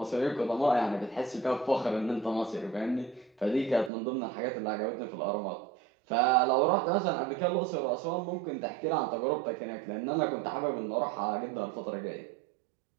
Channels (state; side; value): drops out; left; at 3.9 s